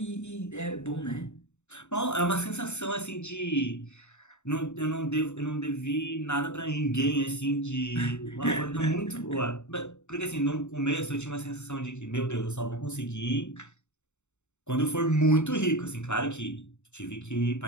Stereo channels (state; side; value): late; right; 0.83 ms